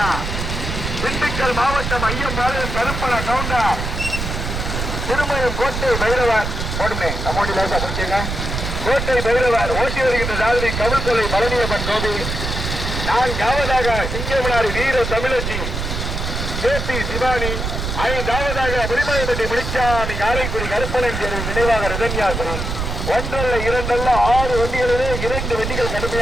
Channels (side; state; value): right; noise; rumble, 4 dB below the sound